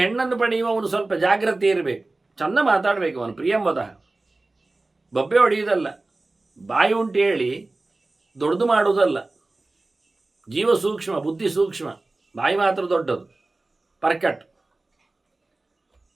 ಹೆಣ್ಣನ್ನು ಪಡೆಯುವವನು ಸ್ವಲ್ಪ ಜಾಗ್ರತೆ ಇರಬೇಕು, ಚೆಂದ ಮಾತಾಡಬೇಕು. ಅವನು ಪ್ರಿಯಂವದ, ಬಬ್ಬೆ ಹೊಡೆಯುವುದಲ್ಲ, ಬಾಯಿ ಉಂಟು ಹೇಳಿ ದೊಡ್ಡದು ಮಾಡುವುದಲ್ಲ. ಜೀವ ಸೂಕ್ಷ್ಮ, ಬುದ್ಧಿ ಸೂಕ್ಷ್ಮ, ಬಾಯಿ ಮಾತ್ರ ದೊಡ್ಡದು, ಪರ್ಕಟ್.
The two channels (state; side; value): quieter; left; 3.1 dB